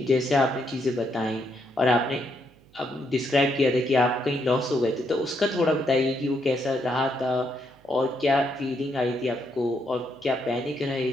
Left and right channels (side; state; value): right; noise; hum, 28 dB below the sound